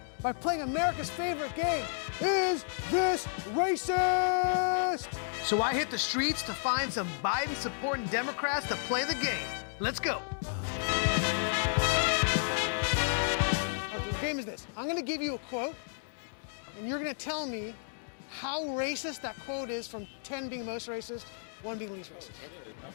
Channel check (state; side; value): silent; right; digital silence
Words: by playing America's favorite game, Is This Racist? So I hit the streets to find some Biden-supporting Democrats to play the game. Let's go. Okay, the game is this. I'm gonna give you a quote, and you're gonna tell me how racist that quote is, from 10 being most racist, 1 being least